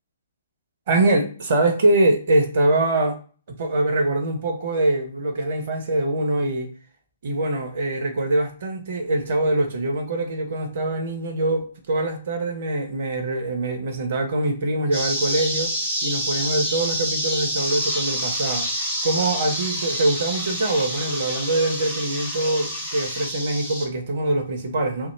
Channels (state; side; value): inverted; both; correlation -0.67